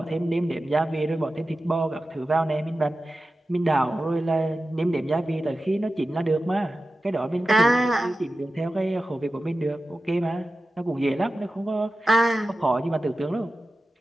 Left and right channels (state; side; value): normal; both; correlation 0.94